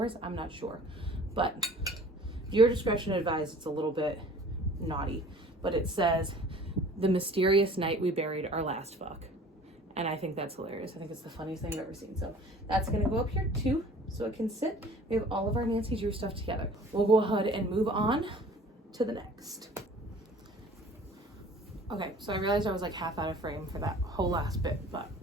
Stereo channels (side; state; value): both; normal; correlation 0.48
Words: I'm not sure, but your discretion advised. It's a little bit naughty, but it says, "The mysterious night we buried our last fuck." And I think that's hilarious. I think it's the funniest thing I've ever seen. So that's gonna go up here too, so it can sit. We have all of our Nancy Drew stuff together. We'll go ahead and move on to the next. Okay, so I realized I was like half out of frame for that whole last bit, but